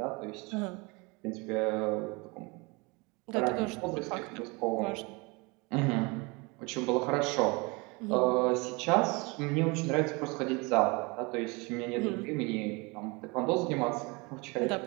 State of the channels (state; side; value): quieter; left; 27.5 dB